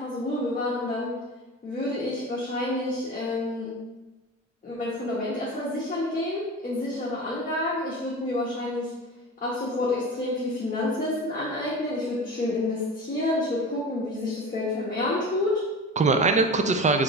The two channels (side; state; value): both; normal; correlation 0.32